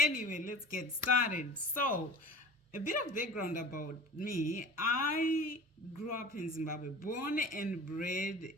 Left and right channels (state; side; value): normal; both; correlation 0.38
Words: let's get started. So, a bit of background about me. I grew up in Zimbabwe, born and bred